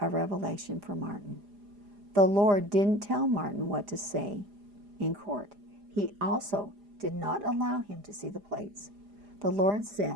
revelation for Martin. The Lord didn't tell Martin what to say in court. He also did not allow him to see the plates. The Lord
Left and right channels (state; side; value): late; left; 4.9 ms